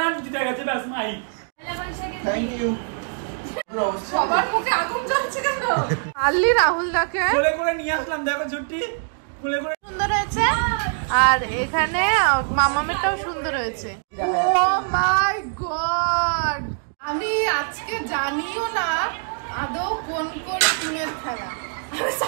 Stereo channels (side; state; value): left; silent; digital silence